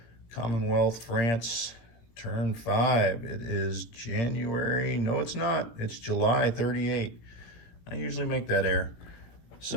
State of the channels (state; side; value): late; right; 18 ms